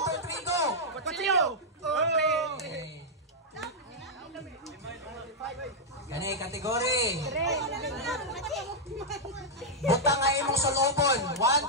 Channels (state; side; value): normal; both; correlation -0.05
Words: 2, 3, go. Kutsilyo. Okay. Kani kategory. Butang nga imong sulubon. 1,